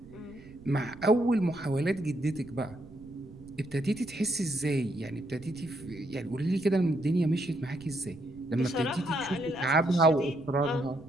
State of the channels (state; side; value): noise; right; rumble, 21 dB below the sound